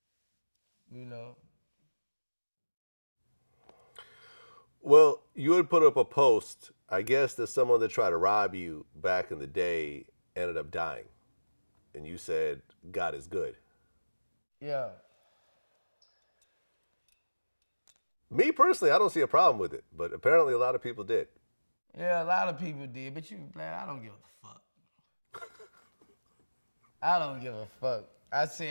You know. Well, you had put up a post, I guess, that someone that tried to rob you back in the day ended up dying. And you said, God is good. Yeah. Me personally, I don't see a problem with it, but apparently a lot of people did. Yeah, a lot of people did, but I don't give a fuck. I don't give a fuck. I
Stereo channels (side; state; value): both; inverted; correlation -1.00